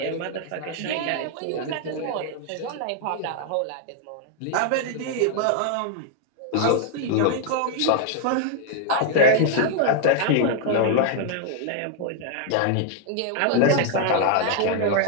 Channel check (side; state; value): both; different; correlation 0.00